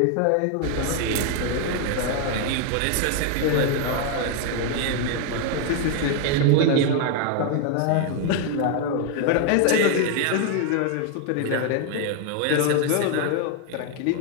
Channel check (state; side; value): different; both; correlation 0.01